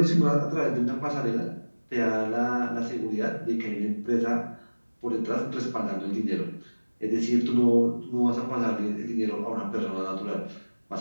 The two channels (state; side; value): inverted; both; correlation -1.00